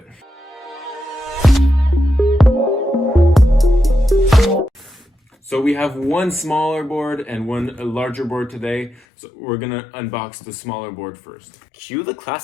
So we have one smaller board and one larger board today. So we're gonna unbox the smaller board first. Cue the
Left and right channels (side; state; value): right; drops out; at 9.0 s